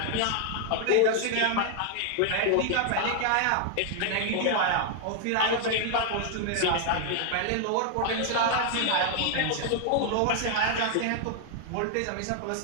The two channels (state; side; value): different; both; correlation 0.00